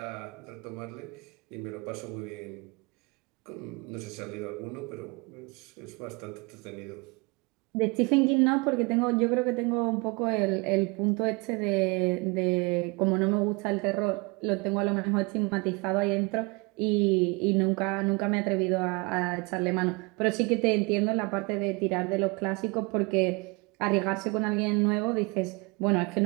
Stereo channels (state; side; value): quieter; left; 28.5 dB